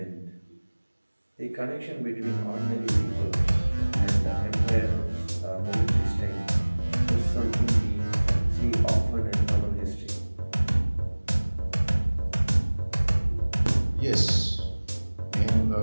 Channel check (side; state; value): both; inverted; correlation -1.00